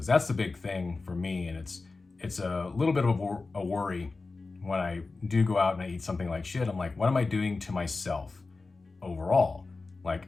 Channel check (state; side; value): quieter; right; 3.8 dB